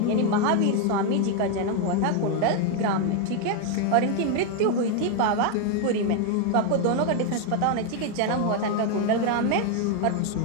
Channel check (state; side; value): different; both; correlation 0.01